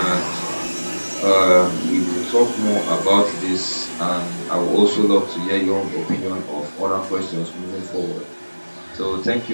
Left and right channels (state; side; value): inverted; both; correlation -1.00